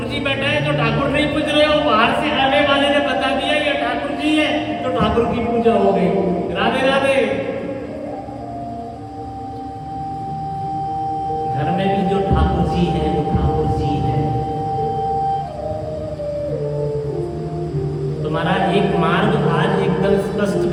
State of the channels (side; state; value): both; identical; correlation 1.00